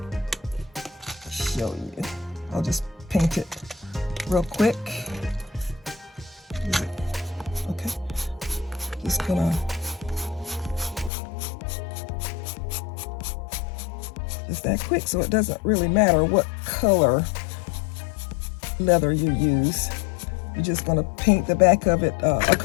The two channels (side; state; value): right; drops out; at 11.1 s